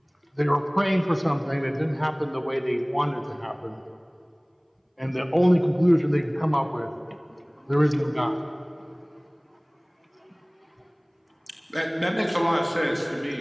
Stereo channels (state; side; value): identical; both; correlation 1.00